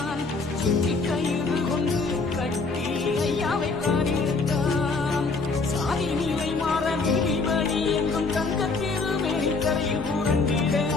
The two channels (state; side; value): quieter; right; 4.0 dB